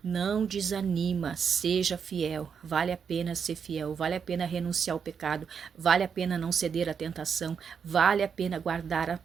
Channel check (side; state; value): left; quieter; 6.7 dB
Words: não desanima, seja fiel. Vale a pena ser fiel, vale a pena renunciar ao pecado, vale a pena não ceder à tentação, vale a pena guardar